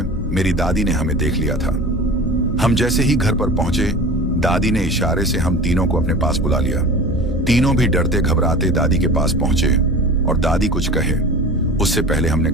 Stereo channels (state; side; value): normal; both; correlation 0.36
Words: मेरी दादी ने हमें देख लिया था। हम जैसे ही घर पर पहुंचे, दादी ने इशारे से हम तीनों को अपने पास बुला लिया। तीनों भी डरते घबराते दादी के पास पहुंचे और दादी कुछ कहे उससे पहले हमने